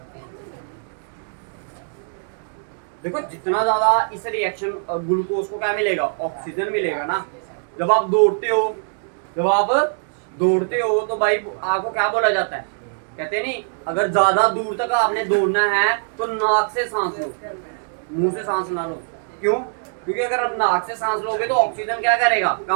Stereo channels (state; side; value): silent; left; digital silence